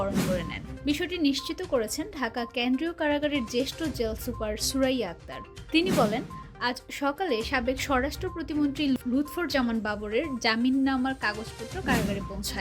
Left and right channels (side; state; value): both; identical; correlation 1.00